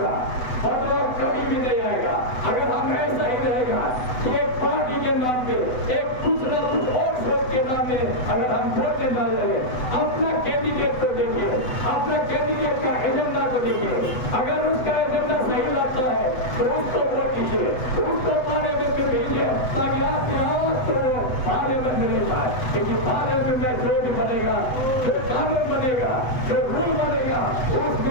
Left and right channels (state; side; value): late; right; 8.0 ms